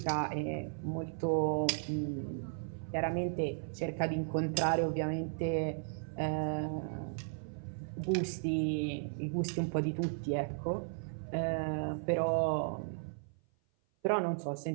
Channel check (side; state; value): left; silent; 54 dB below the other